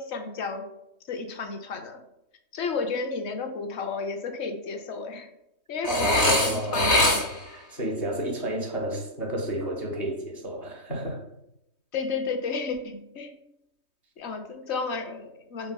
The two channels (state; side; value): late; right; 3.2 ms